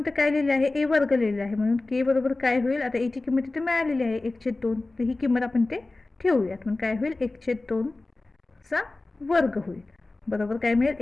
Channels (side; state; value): right; quieter; 3.1 dB